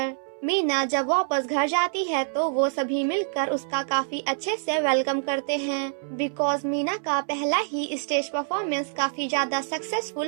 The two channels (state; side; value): silent; left; 61 dB below the other